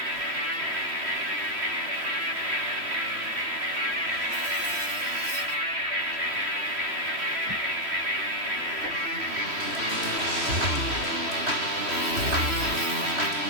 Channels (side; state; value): left; late; 3.1 ms